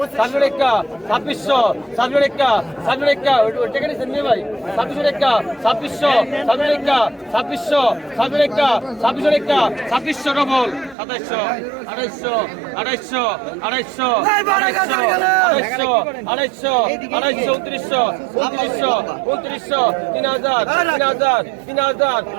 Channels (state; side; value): drops out; left; at 11.0 s